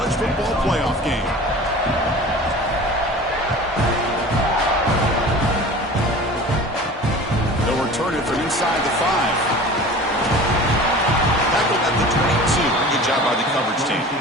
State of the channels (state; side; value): normal; both; correlation 0.39